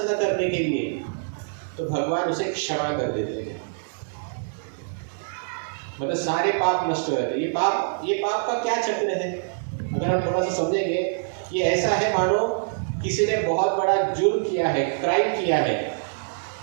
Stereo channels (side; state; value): left; silent; digital silence